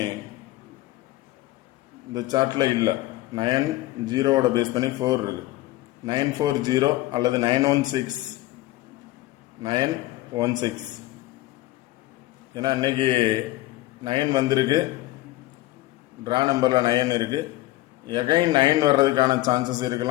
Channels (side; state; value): right; quieter; 17.3 dB